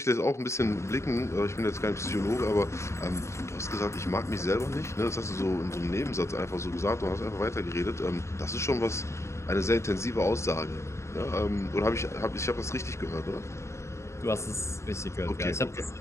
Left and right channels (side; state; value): right; late; 0.14 ms